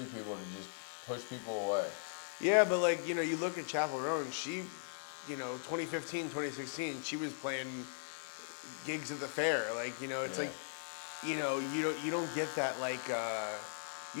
people to just push people away. Yeah, but like, you look at Chapel Roan, she, 2015, 2016, she was playing gigs at the fair. Like, it's Yeah. like, you don't get that, like,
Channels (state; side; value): silent; right; 52 dB below the other